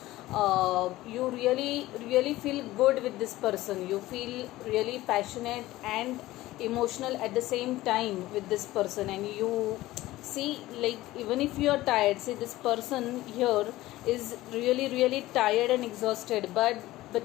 you really feel good with this person, you feel really passionate and emotional at the same time with this person, and you see, like, even if you are tired, see, this person here is really tired and exhausted, but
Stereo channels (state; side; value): quieter; right; 17.0 dB